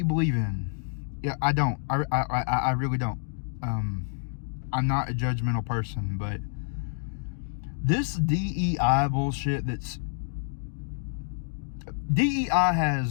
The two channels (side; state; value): right; silent; digital silence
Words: believe in. Yeah, I don't. I really don't. I'm not a judgmental person, but this DEI bullshit DEI